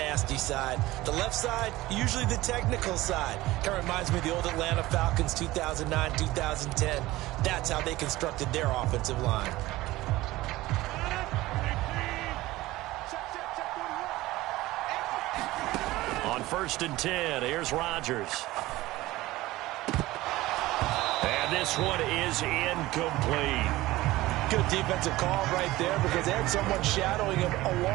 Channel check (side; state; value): left; quieter; 18.0 dB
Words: side. The left side, usually the technical side. Kind of reminds me of the old Atlanta Falcons 2009, 2010. That's how they constructed their offensive line. On 1st and 10, here's Rodgers. And this one is incomplete. Good defensive call right there because they had someone shadowing him